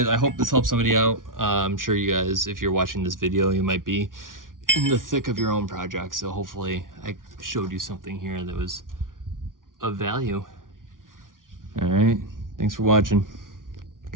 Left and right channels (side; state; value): left; late; 0.89 ms